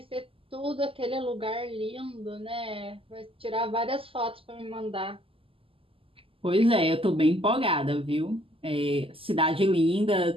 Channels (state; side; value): late; left; 0.26 ms